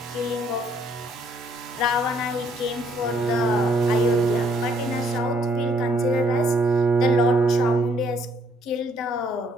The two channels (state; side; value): normal; both; correlation 0.66